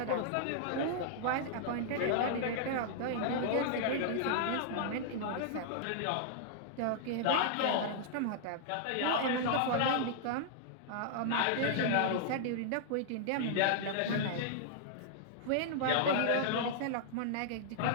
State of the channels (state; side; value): different; both; correlation -0.01